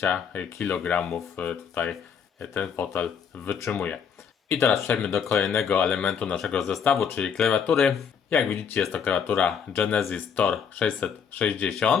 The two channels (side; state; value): right; quieter; 7.0 dB